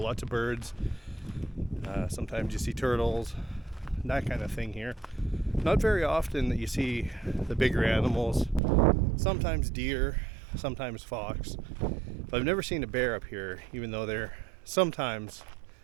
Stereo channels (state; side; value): drops out; left; at 8.6 s